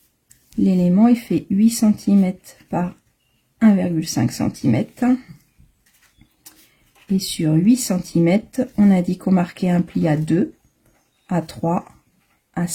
L'élément, il fait 8 cm par 1,5 cm. Et sur 8 cm, on a dit qu'on marquait un pli à 2, à 3, à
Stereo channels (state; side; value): identical; both; correlation 1.00